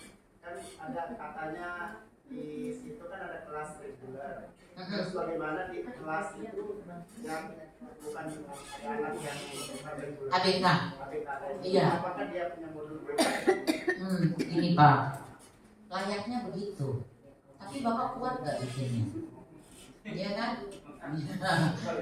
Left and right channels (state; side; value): identical; both; correlation 1.00